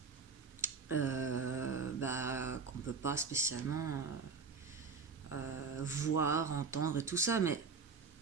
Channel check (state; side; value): quieter; left; 5.1 dB